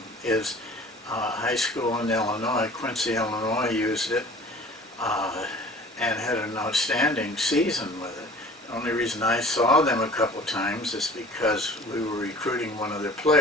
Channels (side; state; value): both; normal; correlation 0.46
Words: is high school in Illinois. Quincy, Illinois used it and had an outstanding season with it. The only reason I saw them a couple of times is because we were recruiting one of their